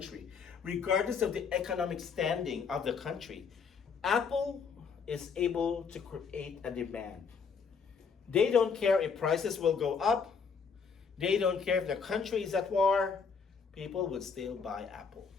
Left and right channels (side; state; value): right; quieter; 5.8 dB